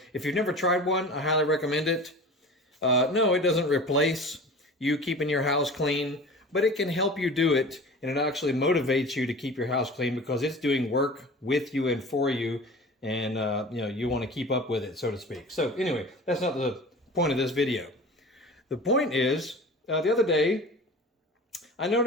if you've never tried one, I highly recommend it. No, it doesn't replace you keeping your house clean, but it can help you do it, and it actually motivates you to keep your house clean because it's doing work with you and for you, and you want to keep up with it, so to speak. So anyway, that's not the point of this video. The point is, the other day, I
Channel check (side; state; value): both; normal; correlation 0.38